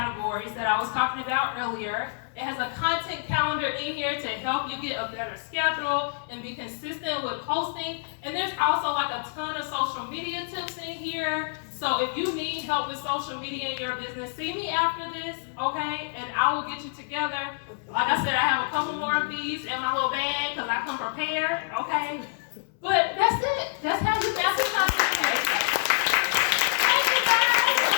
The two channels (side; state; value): right; silent; 60 dB below the other